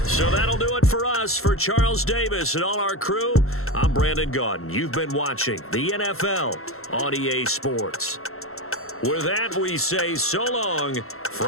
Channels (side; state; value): right; late; 0.62 ms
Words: So that'll do it for us. For Charles Davis and all our crew, I'm Brandon Gaudin. You've been watching the NFL on EA Sports. With that, we say so long